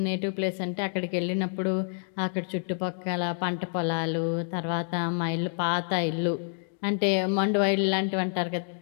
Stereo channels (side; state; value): right; silent; digital silence